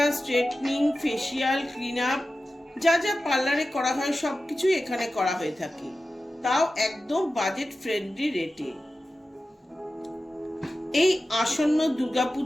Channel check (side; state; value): both; normal; correlation 0.94